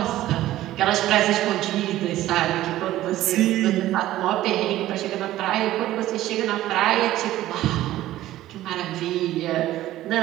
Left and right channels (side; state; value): left; quieter; 14.7 dB